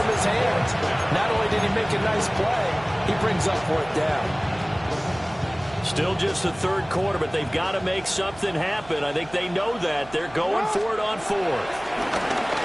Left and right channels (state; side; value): noise; right; hum, 20 dB below the sound